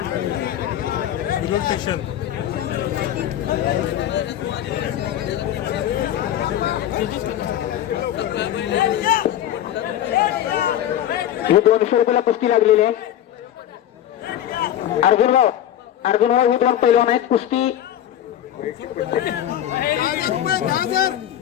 ही 200 रुपयाला कुस्ती लागलेली आहे. अर्जुनभाऊ ही 2 पैलवान आहेत. कुस्ती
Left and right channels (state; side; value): quieter; right; 11.5 dB